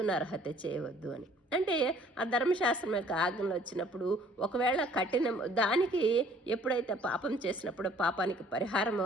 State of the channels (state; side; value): normal; both; correlation 0.56